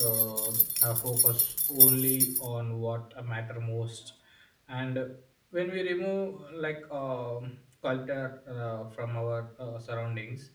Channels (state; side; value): identical; both; correlation 1.00